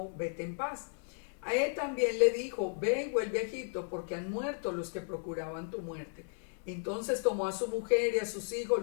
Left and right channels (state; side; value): silent; right; 55 dB below the other